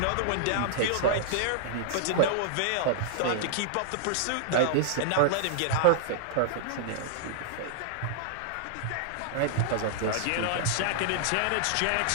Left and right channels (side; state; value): both; different; correlation -0.01